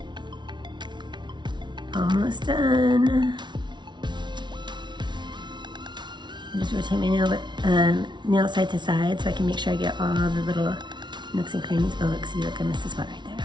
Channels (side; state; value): left; late; 0.22 ms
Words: Almost done. I just rotate my nail side to side so I can make sure I get all the little nooks and crannies. Oh, look, see, look, I missed a spot right